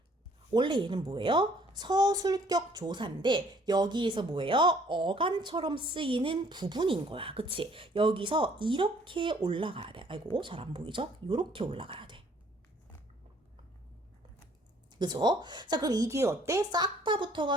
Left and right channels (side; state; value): both; normal; correlation 0.60